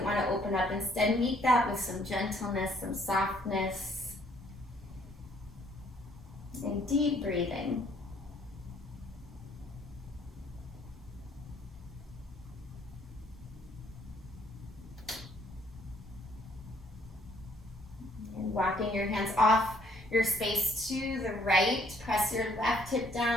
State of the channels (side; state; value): both; normal; correlation 0.64